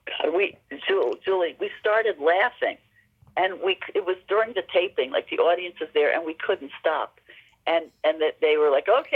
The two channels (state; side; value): identical; both; correlation 1.00